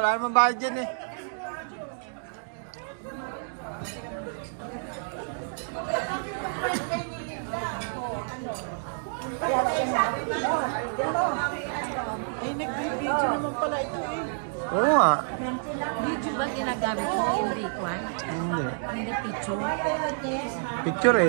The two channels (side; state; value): left; silent; digital silence